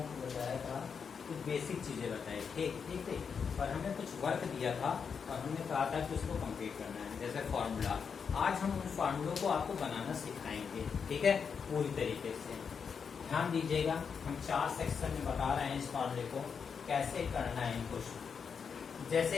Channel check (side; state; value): right; quieter; 6.3 dB